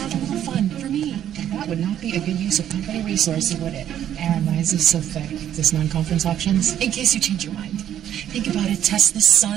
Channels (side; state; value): left; quieter; 10.6 dB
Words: a little fun for me. That would not be a good use of company resources, would it? Aaron, why is this so thick? Is this non-conference options? In case you change your mind. Think about it. Test the